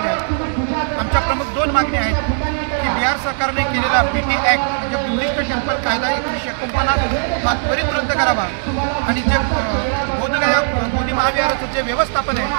आहेत। आमच्या प्रमुख दोन मागण्या आहेत की बिहार सरकारने केलेला BT ॲक्ट म्हणजे बुद्धिस्ट टेम्पल कायदा 1949 हा त्वरित रद्द करावा आणि जे बोधगया बोधी महाविहाराचं जे व्यवस्थापन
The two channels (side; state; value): left; silent; 67 dB below the other